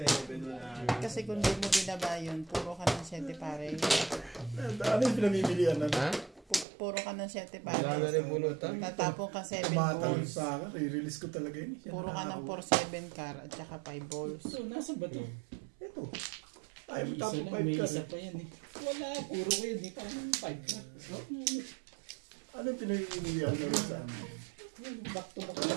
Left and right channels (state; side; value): drops out; left; at 6.7 s